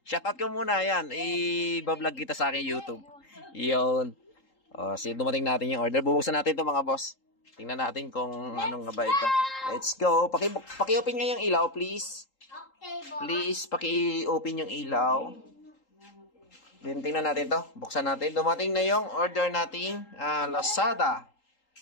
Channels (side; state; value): right; late; 3.8 ms